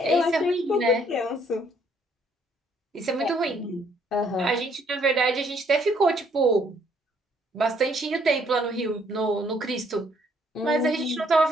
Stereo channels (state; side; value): normal; both; correlation 0.66